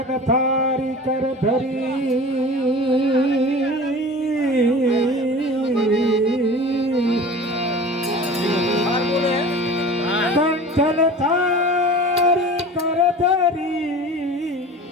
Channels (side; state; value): both; normal; correlation 0.37